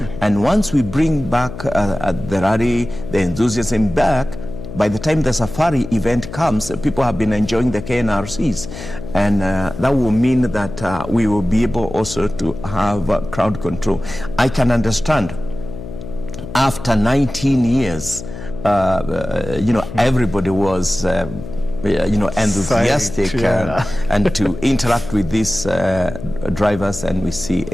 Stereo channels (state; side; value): noise; left; hum, 11 dB below the sound